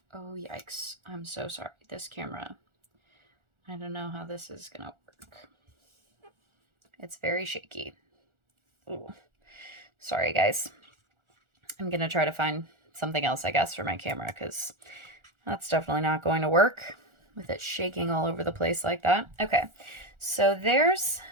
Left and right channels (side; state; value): left; late; 1.4 ms